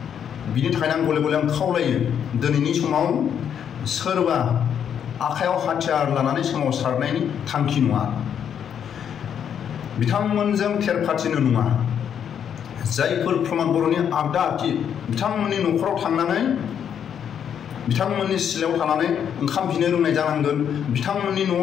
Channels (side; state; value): right; quieter; 8.5 dB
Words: बिनि थाखायनो आं गले गले खावलायो, दिनैनि समाव सोरबा आखायाव हाथियार लानानै सोमावसारनायनि थांखि नङा। बिथांमोनजों थेरफाथिनो नङा। जायफोर प्रमद बर'नि आगदा आखि बिथांमोननि न'खराव थांनानै बिथांमोननि सिलायाव थानानै ओंखाम बिनो रोंनाय जानांगोन। बिथांमोननि न'आव